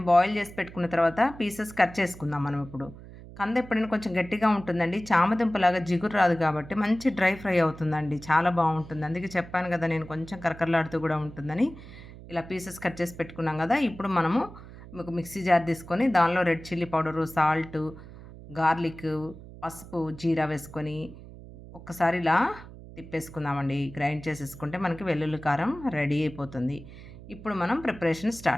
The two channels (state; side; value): noise; right; hum, 16 dB below the sound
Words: బాయిల్ చేసి పెట్టుకున్న తర్వాత పీసెస్ కట్ చేసుకుందాం మనం ఇప్పుడు. కంద ఎప్పుడైనా కొంచెం గట్టిగా ఉంటుందండి. చామదుంపలాగా జిగురు రాదు కాబట్టి మంచి డ్రై ఫ్రై అవుతుందండి. చాలా బాగుంటుంది. అందుకే చెప్పాను కదా, నేను కొంచెం కరకరలాడుతూ కూడా ఉంటుందని. ఇలా పీసెస్ కట్ చేసి పెట్టుకున్నాం కదా. ఇప్పుడు మనము ఒక మిక్సీ జార్ తీసుకొని దానిలో red chilli powder, salt, garlic, పసుపు, జీరా వేసుకొని ఒక్కసారి ఇలా తిప్పేసుకుందామండి. గ్రైండ్ చేసేసుకుంటే మనకి వెల్లుల్లి కారం రెడీ అయిపోతుంది. ఇప్పుడు మనం ప్రిపరేషన్